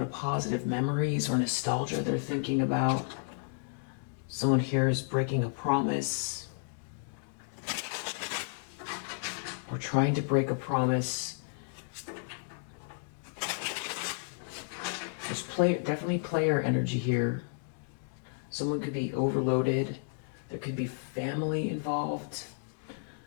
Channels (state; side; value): silent; right; digital silence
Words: of positive memories or nostalgia they're thinking about. Someone here is breaking a promise. Or trying to break a promise. There's definitely player energy here. Someone could be overloaded. There could be family involved.